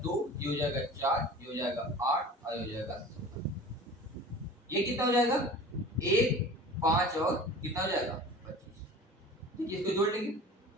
2, ये हो जाएगा 4, ये हो जाएगा 8 और ये हो जाएगा 16। ये कितना हो जाएगा 1 5 और कितना हो जाएगा 25। देखिए इसको जोड़ लेंगे,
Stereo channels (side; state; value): both; normal; correlation 0.40